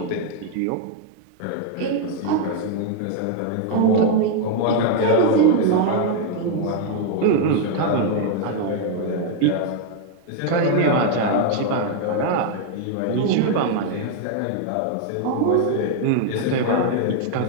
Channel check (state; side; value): different; both; correlation 0.00